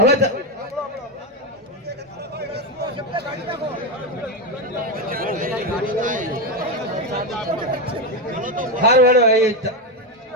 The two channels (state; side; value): normal; both; correlation 0.10